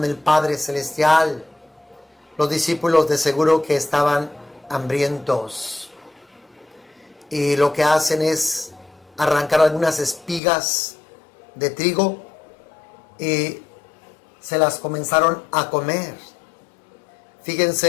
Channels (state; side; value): drops out; right; at 10.4 s